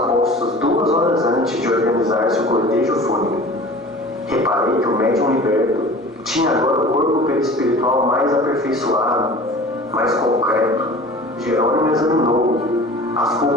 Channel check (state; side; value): normal; both; correlation 0.41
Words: 2 horas antes de organizar-se o cortejo fúnebre. Reparei que o médium liberto tinha agora o corpo perispiritual mais aperfeiçoado, mais concreto. Jerônimo examinou-o,